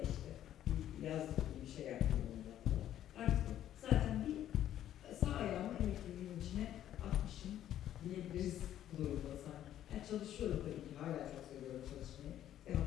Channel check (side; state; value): right; quieter; 11.6 dB